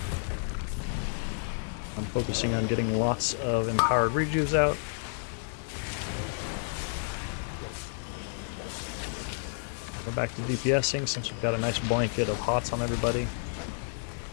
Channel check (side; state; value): right; silent; digital silence